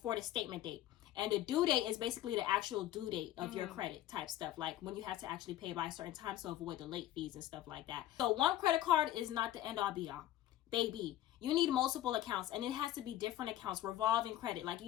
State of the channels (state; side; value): quieter; right; 13.4 dB